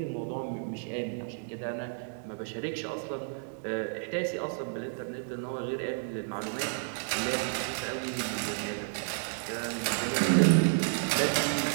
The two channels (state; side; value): silent; left; digital silence